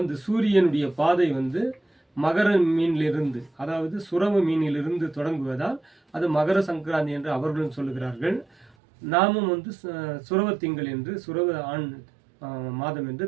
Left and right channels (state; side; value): drops out; left; at 8.7 s